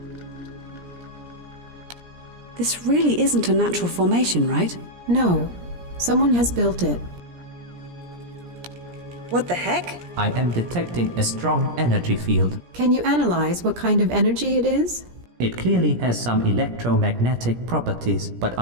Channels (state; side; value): late; left; 17 ms